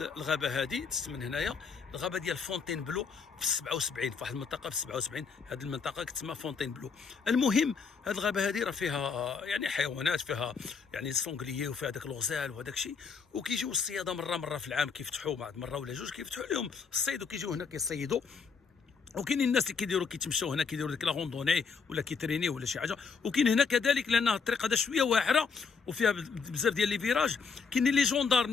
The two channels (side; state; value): right; quieter; 5.6 dB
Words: الغابه هذه من هنايا، الغابه ديال فونتين بلو في 77 في واحد المنطقه في 77. هذه المنطقه كتسمى فونتين بلو. المهم هذه الغابه هذه راه فيها يعني حيوانات، فيها يعني السونغليي وفيها داك الغزال وهذاك الشيء، وكيجيو الصياده مره في العام كيفتحوا بعض مره ولا جوج كيفتحوا لهم الصيد وكيجيو هنا كيصيدوا. وكاينين الناس اللي كيديروا كيتمشاو هنا كيديروا ديك لا روندوني ولا كيتريني ولا شي حاجه. وكاين هنا كذلك لان الطريق هذا شويه واعره وفيها بزاف ديال لي فيراج. كاينين لي